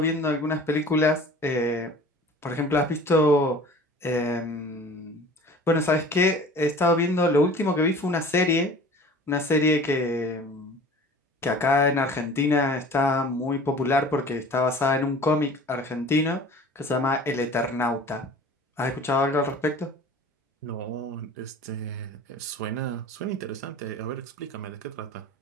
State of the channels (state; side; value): normal; both; correlation 0.43